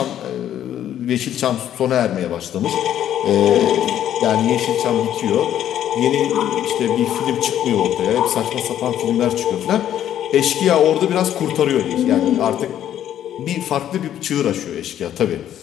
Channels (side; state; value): right; quieter; 10.9 dB